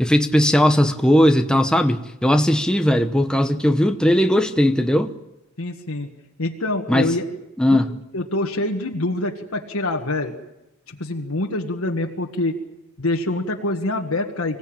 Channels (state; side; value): normal; both; correlation 0.77